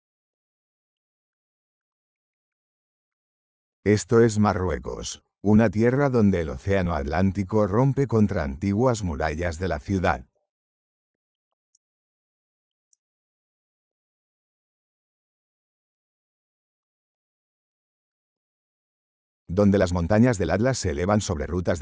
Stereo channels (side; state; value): both; identical; correlation 1.00